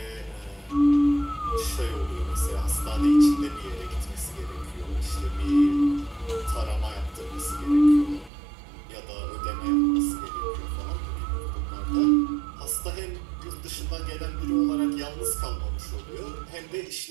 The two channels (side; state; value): left; drops out; at 8.3 s